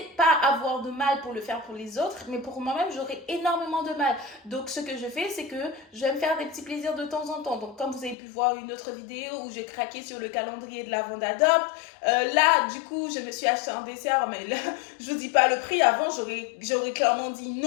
pas avoir de mal pour le faire pour les autres, mais pour moi-même, j'aurai énormément de mal. Donc, ce que je fais, c'est que je vais me faire des petits plaisirs de temps en temps. Donc, comme vous avez pu voir une autre vidéo où j'ai craqué sur le calendrier de l'avant d'Adopte, là, du coup, je me suis acheté un dessert, mais là, je vous dis pas le prix. Avant, j'aurais clairement dit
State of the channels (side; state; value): right; drops out; at 8.2 s